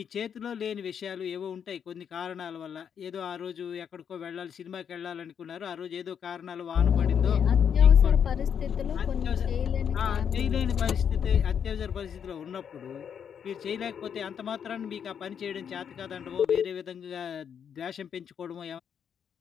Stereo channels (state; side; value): quieter; right; 7.9 dB